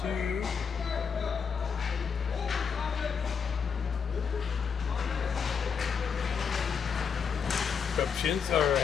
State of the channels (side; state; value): right; quieter; 6.4 dB